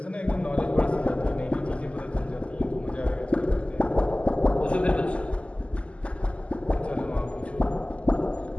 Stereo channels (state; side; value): late; right; 0.058 ms